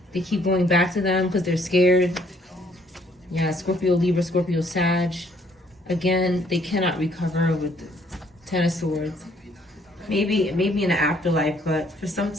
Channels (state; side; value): normal; both; correlation 0.65